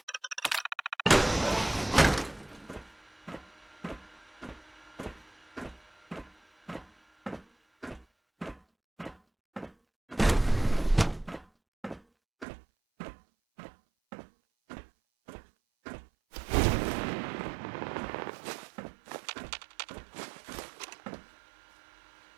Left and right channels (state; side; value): drops out; left; at 12.5 s